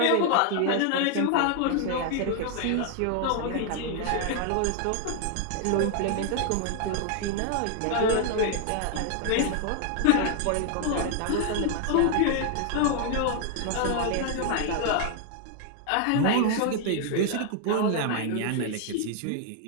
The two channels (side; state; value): both; different; correlation 0.00